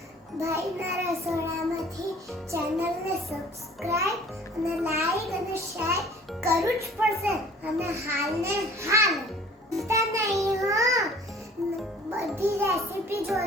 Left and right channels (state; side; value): normal; both; correlation 0.50